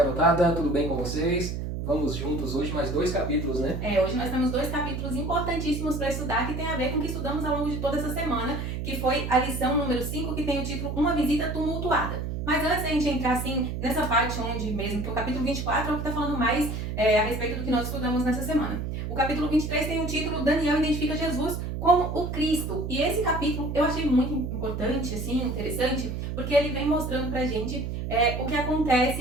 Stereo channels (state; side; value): noise; right; hum, 4 dB below the sound